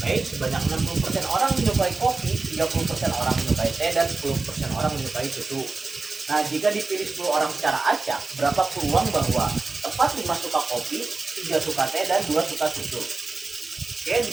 sebanyak 60% orang menyukai kopi, 30% orang menyukai teh, dan 10% orang menyukai susu. Nah, jika dipilih 10 orang secara acak, berapa peluang bahwa tepat 5 suka kopi, 3 suka teh, dan 2 suka susu? Oke, di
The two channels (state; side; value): quieter; left; 3.7 dB